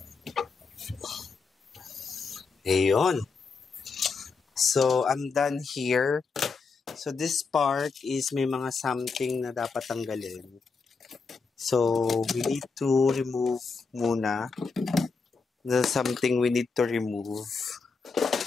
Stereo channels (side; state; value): right; quieter; 4.7 dB